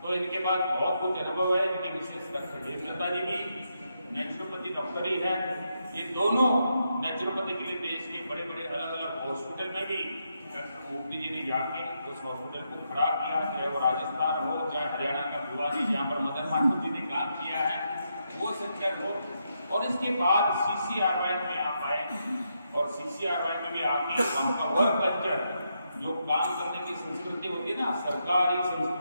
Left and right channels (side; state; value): both; inverted; correlation -0.82